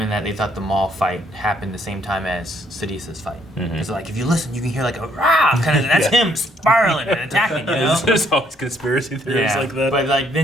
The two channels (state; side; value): normal; both; correlation 0.68